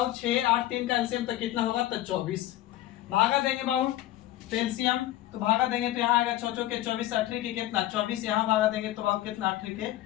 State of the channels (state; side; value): quieter; right; 14.7 dB